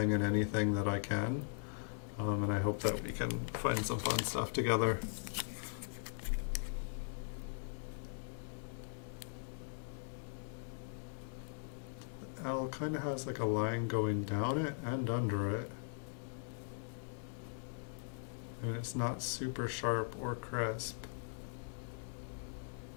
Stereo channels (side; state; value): right; silent; digital silence